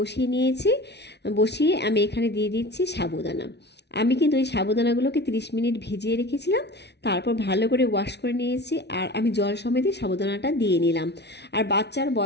নিয়েছি। বসিয়ে আমি এখানে দিয়ে দিচ্ছি সাবুদানা। আমি কিন্তু এই সাবুদানাগুলোকে 30 মিনিট ভিজিয়ে রেখেছিলাম, তারপর ভালো করে ওয়াশ করে নিয়েছি। আর আমি জল সমেতই সাবুদানাটা দিয়ে নিলাম। আর বাচ্চার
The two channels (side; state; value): right; late; 0.50 ms